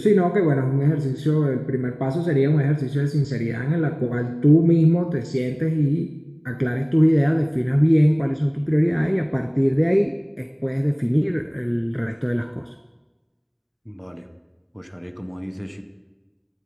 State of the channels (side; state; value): both; identical; correlation 1.00